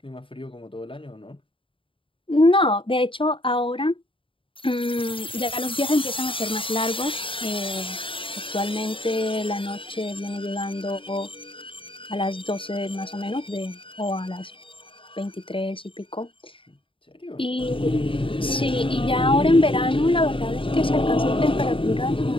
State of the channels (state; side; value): late; right; 0.25 ms